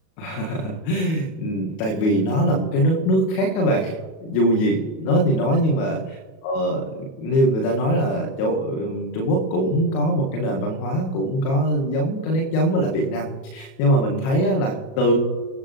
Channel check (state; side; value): late; right; 37 ms